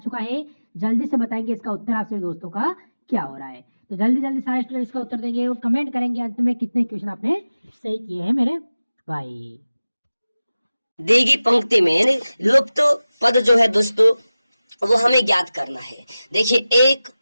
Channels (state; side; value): inverted; both; correlation -0.96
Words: है, जल्दी से बताएंगे इसका उत्तर आप सभी दोस्तों का क्या हो रहा है। तो जल्दी जल्दी सारे स्टूडेंट्स का उत्तर देंगे और कमेंट करेंगे अंत में कितने क्वेश्चन आपने सही किए हैं मेरे भाई। दी गई पंक्ति में लुप्त पद जो है दोस्तों वो हमें ज्ञात करना है। देखिए 1